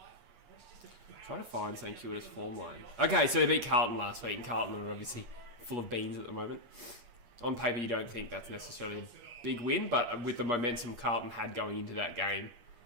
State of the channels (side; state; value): left; late; 8.4 ms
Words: Trying to find St Kilda's form line. Okay, so they beat Carlton last week, and Carlton are obviously full of beans at the moment. On paper, you don't think that's necessarily a big win, but with the momentum Carlton had going into that game,